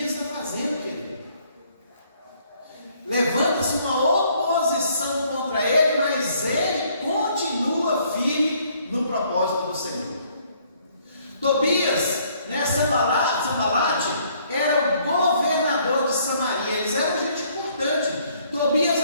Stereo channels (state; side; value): inverted; both; correlation -0.65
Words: está fazendo, querido. Levanta-se uma oposição contra ele, mas ele continua firme no propósito do Senhor. Tobias, né, Sanbalate, era o governador de Samaria. Eles eram gente importante. Tobias